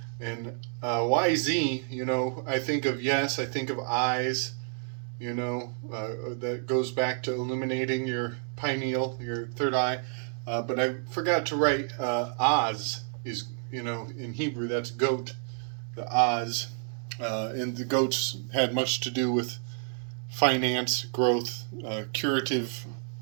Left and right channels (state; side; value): silent; left; 58 dB below the other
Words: And YZ, I think of yes, I think of eyes, that goes back to illuminating your pineal, your third eye. But I forgot to write Oz is, in Hebrew, that's goat, the Oz. And the goats had much to do with finance, growth, curative